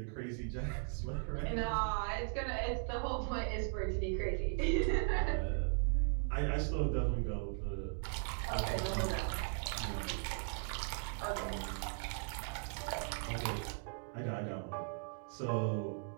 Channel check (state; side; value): silent; left; 52 dB below the other